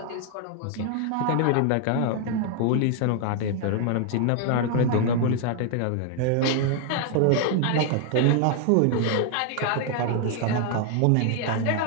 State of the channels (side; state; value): both; different; correlation 0.00